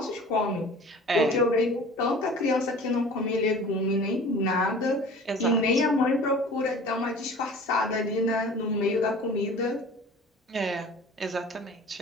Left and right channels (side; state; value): both; normal; correlation 0.43